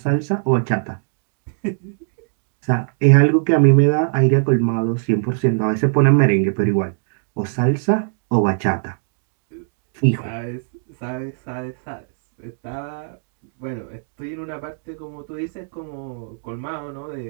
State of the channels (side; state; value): left; silent; digital silence